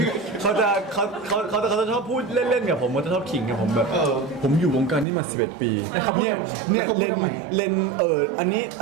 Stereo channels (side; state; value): left; drops out; at 5.1 s